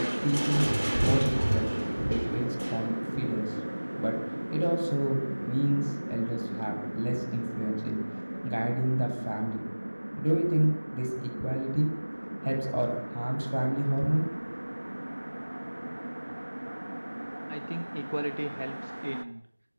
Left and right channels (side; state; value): both; inverted; correlation -1.00